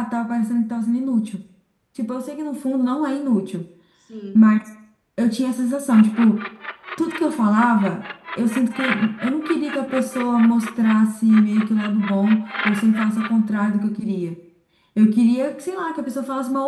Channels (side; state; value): both; identical; correlation 1.00